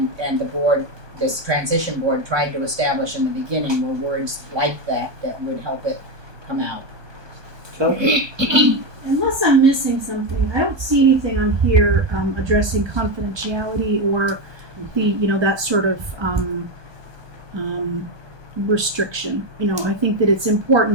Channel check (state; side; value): late; left; 1.2 ms